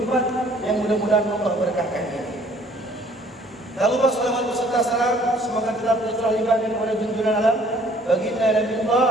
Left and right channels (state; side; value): normal; both; correlation 0.58